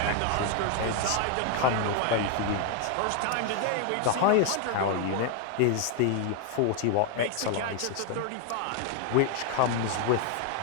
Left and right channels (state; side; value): different; both; correlation 0.01